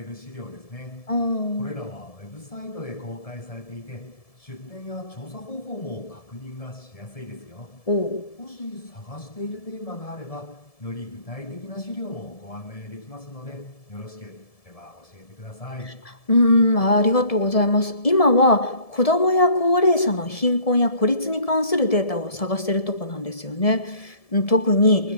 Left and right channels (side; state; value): right; late; 1.7 ms